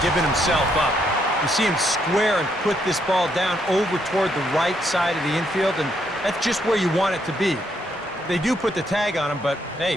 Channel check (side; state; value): both; normal; correlation 0.74